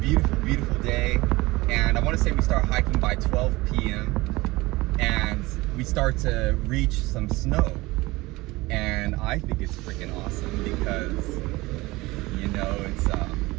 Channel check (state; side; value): quieter; left; 21.0 dB